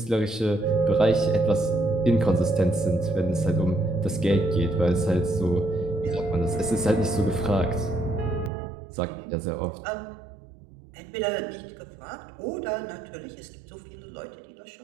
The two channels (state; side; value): drops out; left; at 8.5 s